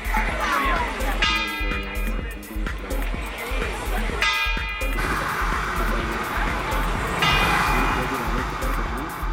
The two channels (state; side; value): identical; both; correlation 1.00